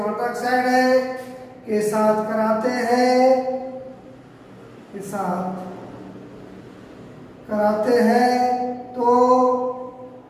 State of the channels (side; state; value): both; identical; correlation 1.00